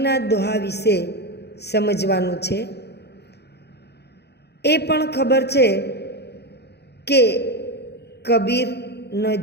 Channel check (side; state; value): right; late; 0.48 ms